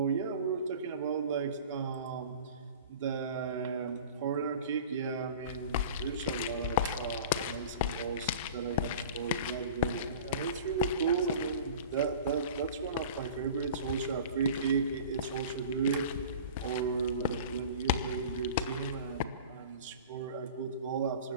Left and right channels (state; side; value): inverted; both; correlation -0.39